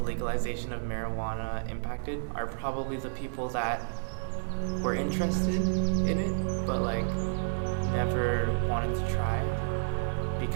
legalization of marijuana impacted are probably the people that were interested in it, but like never wanted to try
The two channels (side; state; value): left; silent; digital silence